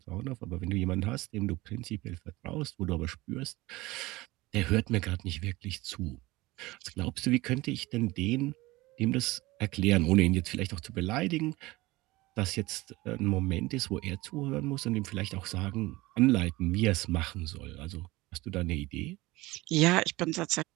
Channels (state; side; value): quieter; left; 20.4 dB